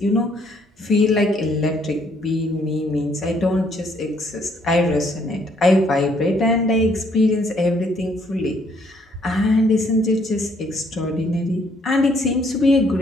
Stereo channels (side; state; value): both; normal; correlation 0.67